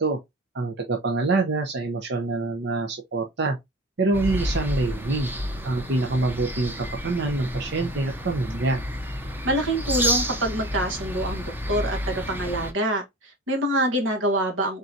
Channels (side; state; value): both; normal; correlation 0.37